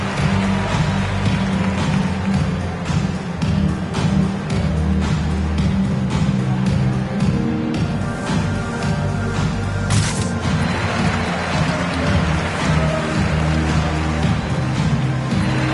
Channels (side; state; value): both; identical; correlation 1.00